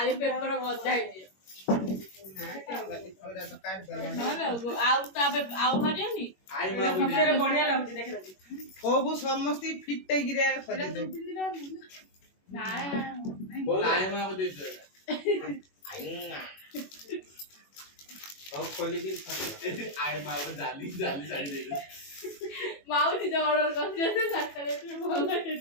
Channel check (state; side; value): late; right; 21 ms